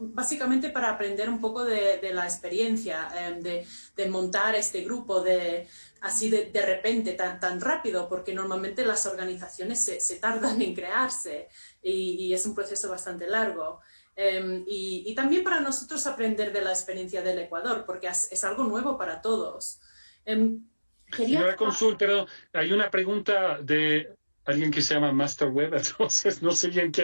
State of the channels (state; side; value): inverted; both; correlation -1.00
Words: básicamente para aprender un poco de la experiencia de montar este grupo así de repente, tan rápido, porque normalmente las organizaciones se tardan en crearse y es un proceso bastante largo. Y también para nosotros aprender de la experiencia del Ecuador, porque es algo nuevo para todos. Señora Cónsul, pero hay una pregunta de alguien que se llama Master Web, entonces no sé bien